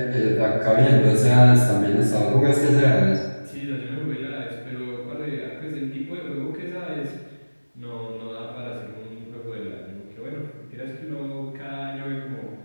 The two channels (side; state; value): both; inverted; correlation -1.00